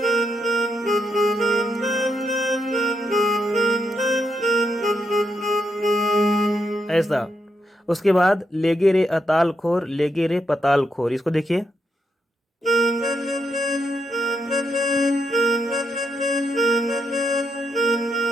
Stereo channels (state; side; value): normal; both; correlation 0.81